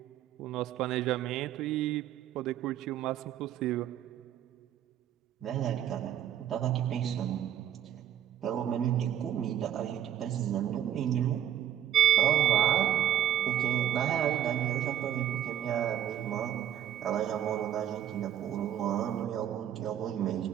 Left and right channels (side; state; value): left; quieter; 10.7 dB